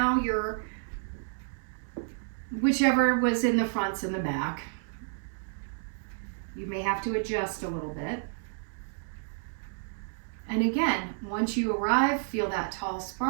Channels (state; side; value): silent; left; digital silence